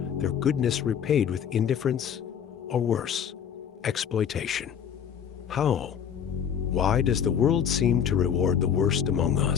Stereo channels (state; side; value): quieter; right; 8.2 dB